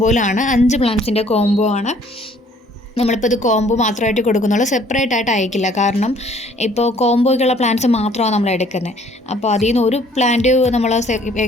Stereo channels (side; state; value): both; normal; correlation 0.59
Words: 5 പ്ലാന്റ്സിൻ്റെ കോംബോ ആണ്. നമ്മളിപ്പോൾ ഇത് കോംബോ മാത്രമായിട്ട് കൊടുക്കുന്നുള്ളൂ, സെപ്പറേറ്റ് ആയിട്ട് അയക്കില്ല. കാരണം ഇപ്പോൾ കോംബോയ്ക്കുള്ള പ്ലാന്റ്സ് മാത്രമാണ് നമ്മൾ എടുക്കുന്നത്. അപ്പോൾ അതിൽ നിന്ന് ഒരു പ്ലാന്റ് നമ്മൾ